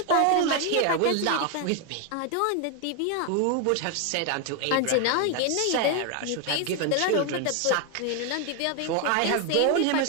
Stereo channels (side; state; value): both; different; correlation 0.01